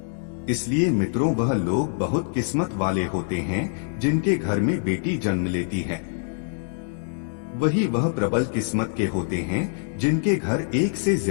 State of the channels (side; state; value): right; silent; digital silence